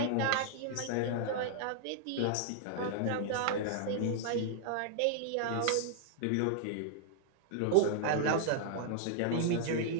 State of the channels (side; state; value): both; different; correlation -0.01